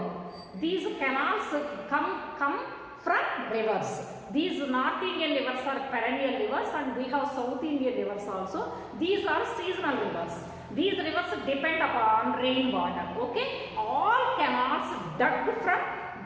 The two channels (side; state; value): both; identical; correlation 1.00